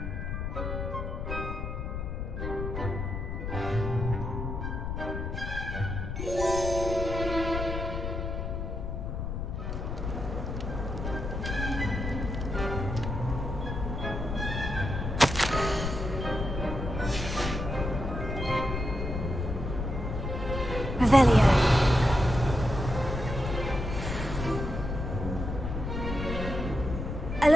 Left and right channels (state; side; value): noise; left; rumble, 4 dB below the sound